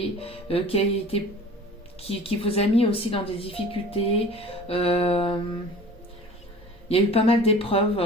qui vous a mis aussi dans des difficultés. Il y a eu pas mal d'épreuves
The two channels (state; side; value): normal; both; correlation 0.43